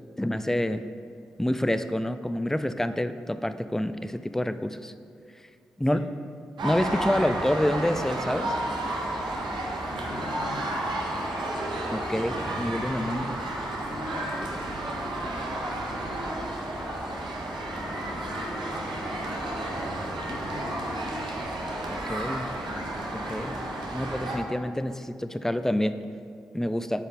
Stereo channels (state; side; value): normal; both; correlation 0.87